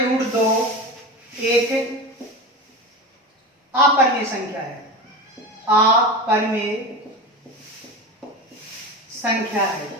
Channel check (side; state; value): both; normal; correlation 0.26